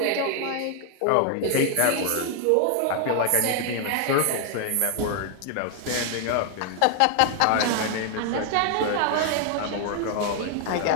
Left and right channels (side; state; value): both; different; correlation 0.00